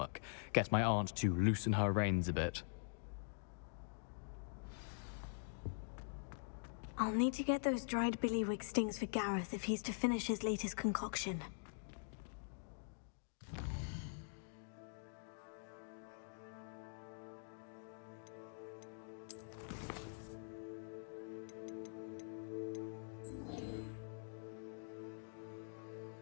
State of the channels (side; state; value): right; silent; digital silence